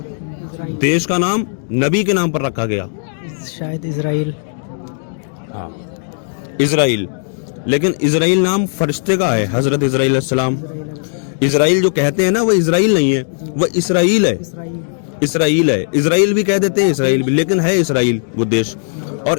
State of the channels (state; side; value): silent; right; digital silence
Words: देश का नाम नबी के नाम पर रखा गया। शायद इजराइल। हाँ, इजराइल। लेकिन इजराइल नाम फरिश्ते का है, हजरत इजराइल अलैहिस्सलाम। इजराइल जो कहते हैं ना, वो इजराइल नहीं है, वो इसराइल है। इसराइल है, इजराइल भी कह देते हैं, इसराइल भी, लेकिन है इसराइल वो देश। और